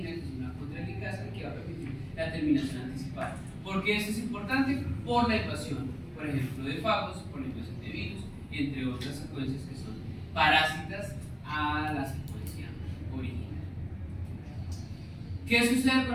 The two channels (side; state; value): both; identical; correlation 1.00